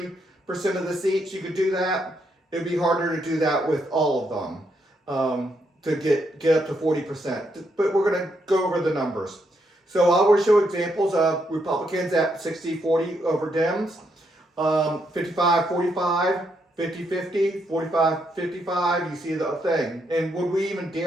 of the seats. You could do that. it'd be harder to do that with all of them to get up to 40%. But we're going to go over the numbers. So I will show examples of Republicans at 60-40 over Dems, 55-45, 50-50, 45-55. You see the thing. And would we even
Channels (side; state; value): both; normal; correlation 0.77